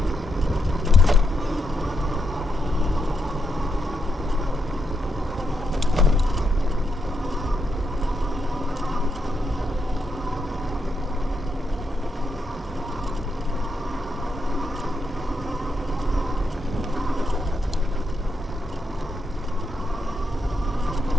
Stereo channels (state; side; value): normal; both; correlation 0.82